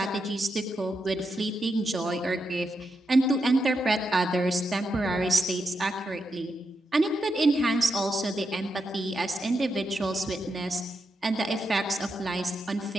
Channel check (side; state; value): both; normal; correlation 0.85